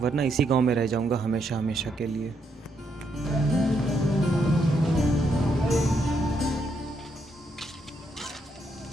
वरना इसी गांव में रह जाऊंगा हमेशा हमेशा के लिए।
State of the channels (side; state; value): both; normal; correlation 0.77